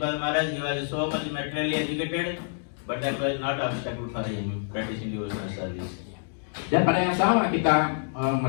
Maharaj, he was so much materially educated, but that was not obstacle for him practicing devotional service. Dan pada yang sama kita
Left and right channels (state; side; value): silent; right; digital silence